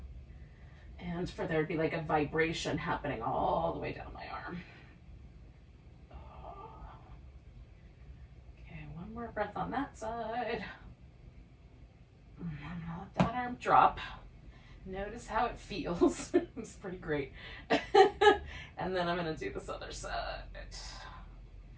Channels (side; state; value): both; identical; correlation 1.00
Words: and for there to be like a vibration happening all the way down my arm. Okay, one more breath on that side. Let that arm drop. Notice how it feels. It's pretty great. And then I'm going to do this other side.